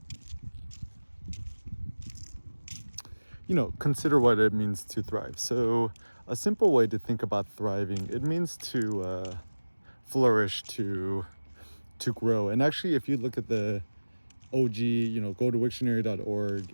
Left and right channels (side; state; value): both; inverted; correlation -1.00